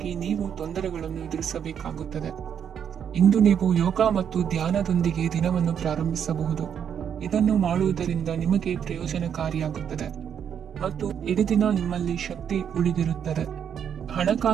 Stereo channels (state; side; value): quieter; left; 8.3 dB